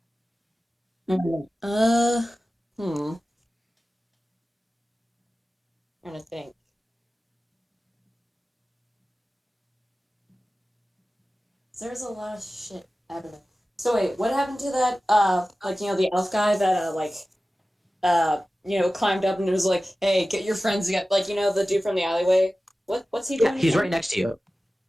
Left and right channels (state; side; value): normal; both; correlation 0.96